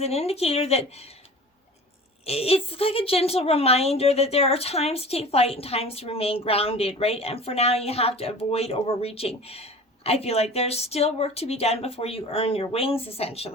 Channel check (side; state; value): both; normal; correlation 0.40